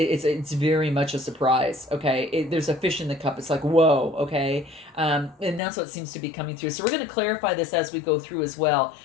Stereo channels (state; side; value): drops out; right; at 5.6 s